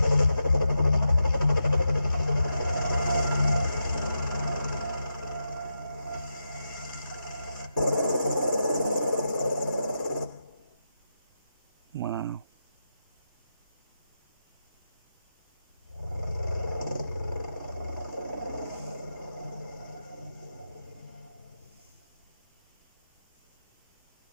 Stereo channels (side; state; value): both; inverted; correlation -0.87